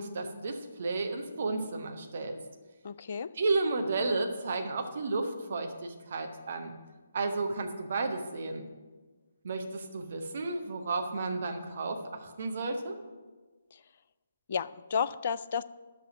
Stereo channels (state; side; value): inverted; both; correlation -0.80